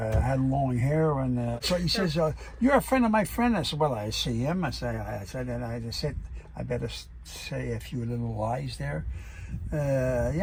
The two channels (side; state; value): both; identical; correlation 1.00